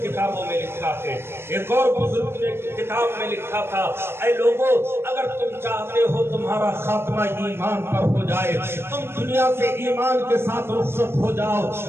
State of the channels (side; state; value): left; late; 0.12 ms